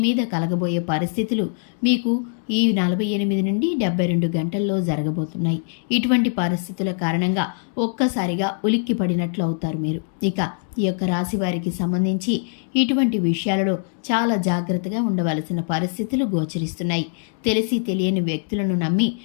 మీద కలగబోయే పరిస్థితులు మీకు ఈ 48 నుండి 72 గంటల్లో జరగబోతున్నాయి. ఇటువంటి పరిస్థితుల కారణంగా ఒక్కసారిగా ఉలిక్కి పడినట్లు అవుతారు మీరు. ఇక ఈ యొక్క రాశి వారికి సంబంధించి ఇటువంటి విషయాలలో చాలా జాగ్రత్తగా ఉండవలసిన పరిస్థితులు గోచరిస్తున్నాయి. తెలిసి తెలియని వ్యక్తులను నమ్మి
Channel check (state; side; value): silent; right; 57 dB below the other